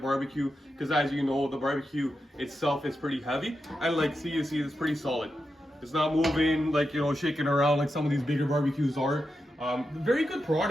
because as you know, the barbecue itself is pretty heavy, and like you see it's pretty solid. It's not moving, like, you know, shaking around like some of these bigger barbecues are. Very good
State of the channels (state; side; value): normal; both; correlation 0.88